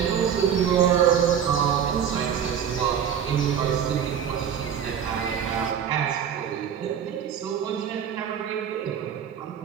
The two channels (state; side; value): quieter; left; 8.5 dB